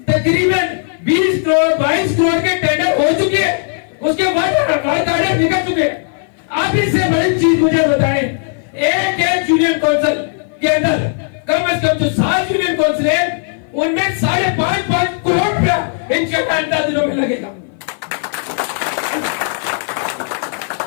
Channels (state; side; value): silent; right; 56 dB below the other